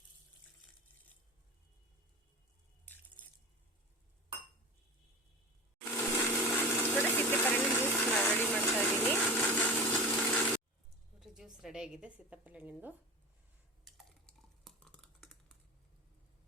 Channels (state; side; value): normal; both; correlation 0.31